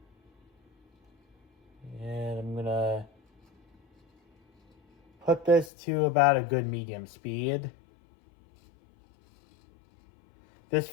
And I'm gonna put this to about a good medium speed. This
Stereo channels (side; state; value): right; drops out; at 5.7 s